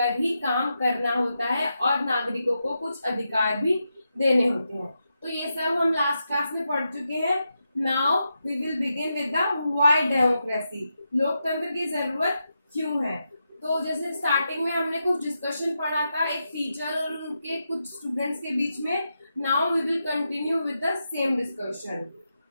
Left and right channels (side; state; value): both; inverted; correlation -0.87